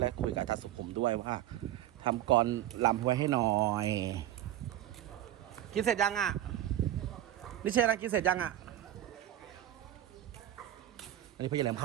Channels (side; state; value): left; quieter; 12.6 dB